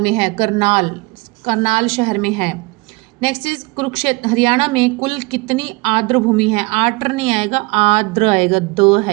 है, करनाल शहर में है। नेक्स्ट इज कुरुक्षेत्र हरियाणा में कुल कितनी आर्द्र भूमि है? आर्द्र नहीं आएगा, आर्द्र आएगा, द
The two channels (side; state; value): left; quieter; 25.0 dB